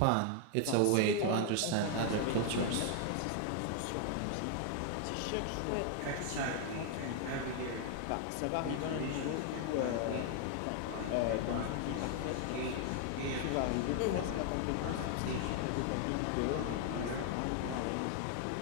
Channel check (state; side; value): different; both; correlation 0.00